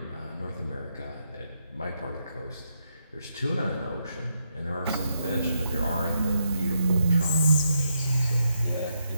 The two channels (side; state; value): both; inverted; correlation -0.81